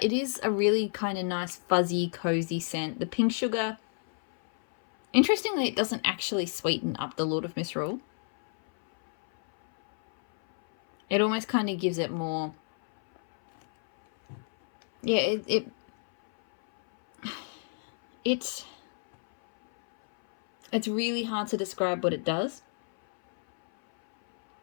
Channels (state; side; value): silent; right; 59 dB below the other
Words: it is a really kind of nice, fuzzy, cozy scent. The pink sugar, interestingly, it doesn't actually sweeten up the Lord of Misrule. It almost kind of gives it more, yeah, it's really hard to describe what it does.